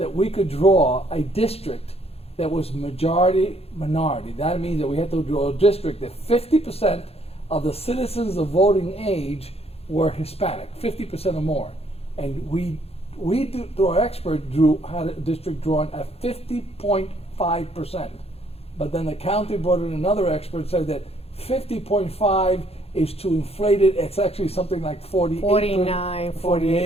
we could draw a district that was majority minority. That means that we had to draw a district that 50% of the citizens of voting age were Hispanic, 50% or more. And we through our expert, had a district drawn at 50.5%. But then the county brought in another expert, said that 50.5 is too inflated. It's actually something like 48, 49,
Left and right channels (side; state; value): right; late; 0.29 ms